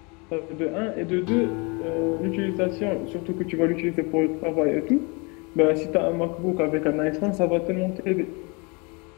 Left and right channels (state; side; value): quieter; right; 30.0 dB